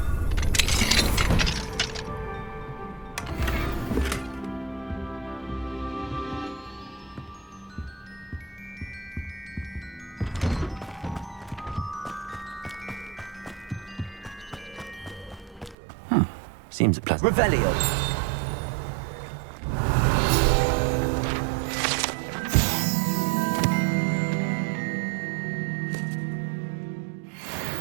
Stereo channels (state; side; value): drops out; left; at 15.8 s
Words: Seems a pleasant. Revelio.